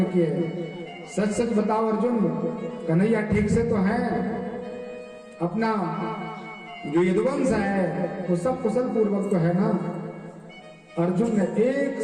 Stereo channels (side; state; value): both; identical; correlation 1.00